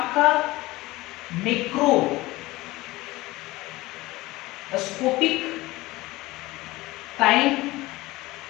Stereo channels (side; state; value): right; quieter; 19.6 dB